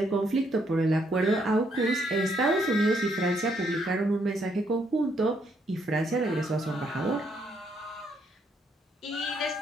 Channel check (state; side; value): normal; both; correlation 0.73